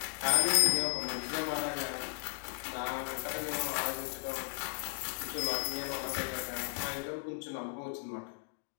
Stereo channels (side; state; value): right; silent; 54 dB below the other